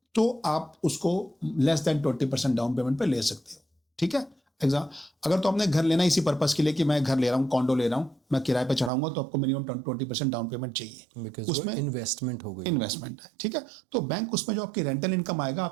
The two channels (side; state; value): left; drops out; at 8.9 s